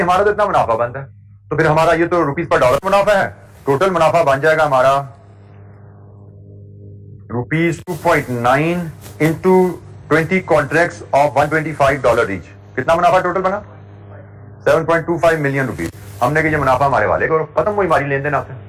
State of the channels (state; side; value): identical; both; correlation 1.00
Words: हमारा तो इतना मुनाफा बनता है, तो फिर हमारा ये तो रुपीज पर डॉलर मुनाफा है। टोटल मुनाफा बन जाएगा हमारा rupees 2.9 into 20 contracts of $125 each. कितना मुनाफा टोटल बना? 7.25 मिलियन रुपीज। हमने कहा ये मुनाफा हमारे वाले को, खत्म हुई हमारी लेन देन आपसे।